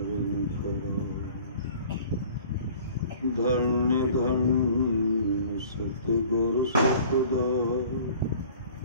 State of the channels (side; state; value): both; inverted; correlation -0.49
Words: धन्य धन्य सतगुरु सतदार